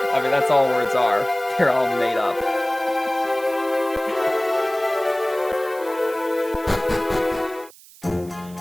I mean, that's all words are. They're all made up.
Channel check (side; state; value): right; noise; hiss, 22 dB below the sound